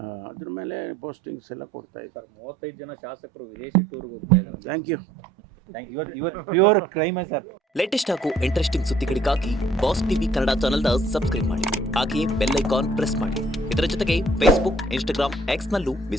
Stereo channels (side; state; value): both; normal; correlation 0.61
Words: ಅದ್ರ ಮೇಲೆ ಪೋಸ್ಟಿಂಗ್ಸ್ ಎಲ್ಲ ಕೊಡ್ತಾ ಇದ್ದಾರೆ. 35 ಜನ ಶಾಸಕರು ವಿದೇಶಿ ಟೂರ್ಗೆ ಹೋಗ್ತಾ ಇದ್ದಾರೆ. Thank you. Pure crime sir. Latest ಹಾಗೂ ಇಂಟ್ರೆಸ್ಟಿಂಗ್ ಸುದ್ದಿಗಳಿಗಾಗಿ ಬಾಸ್ ಟಿವಿ ಕನ್ನಡ ಚಾನೆಲ್ನ ಸಬ್ಸ್ಕ್ರೈಬ್ ಮಾಡಿ, ಹಾಗೆಯೇ ಬೆಲ್ ಐಕಾನ್ ಪ್ರೆಸ್ ಮಾಡಿ. ಇದರ ಜೊತೆಗೆ Facebook, Instagram, X ನಲ್ಲೂ